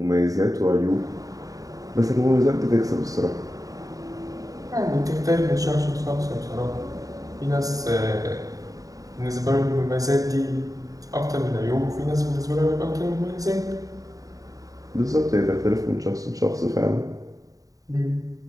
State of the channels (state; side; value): late; left; 0.17 ms